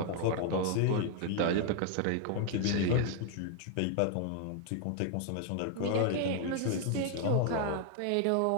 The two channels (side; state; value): both; different; correlation 0.00